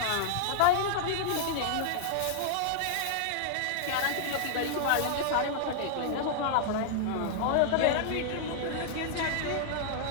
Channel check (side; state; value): both; different; correlation -0.01